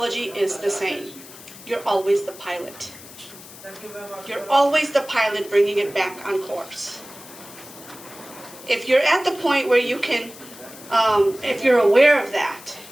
is the same. You're always the pilot. You're always the pilot bringing it back on course. If you're at the point where you can, if you're aware of that,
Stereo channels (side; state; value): left; noise; hiss, 18 dB below the sound